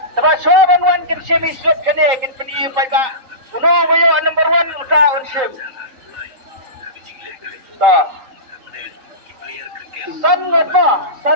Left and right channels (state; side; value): late; left; 3.8 ms